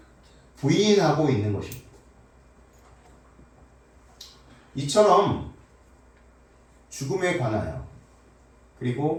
부인하고 있는 것입니다. 이처럼 죽음에 관하여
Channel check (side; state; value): both; identical; correlation 1.00